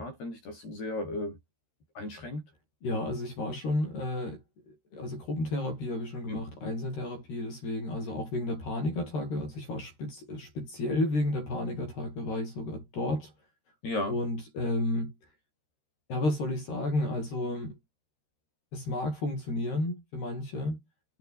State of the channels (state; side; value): late; right; 13 ms